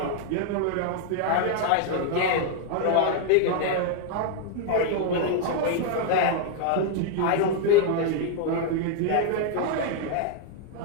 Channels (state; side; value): different; both; correlation 0.00